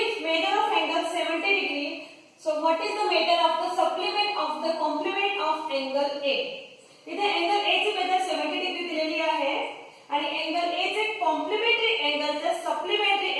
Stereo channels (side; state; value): both; identical; correlation 1.00